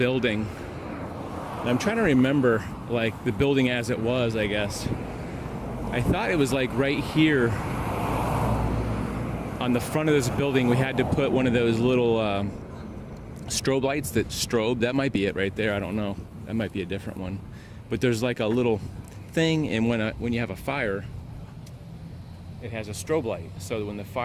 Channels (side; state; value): both; identical; correlation 1.00